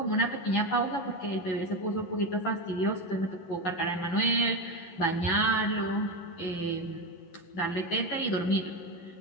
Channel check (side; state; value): right; late; 11 ms